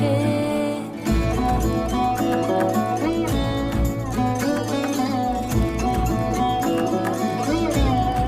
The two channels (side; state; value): both; identical; correlation 1.00